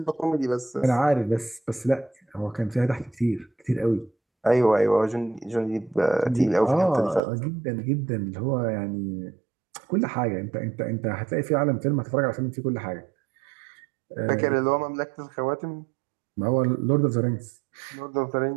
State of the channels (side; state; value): left; drops out; at 7.2 s